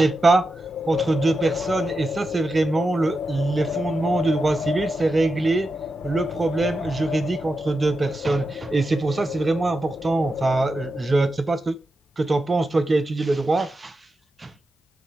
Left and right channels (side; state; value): both; normal; correlation 0.89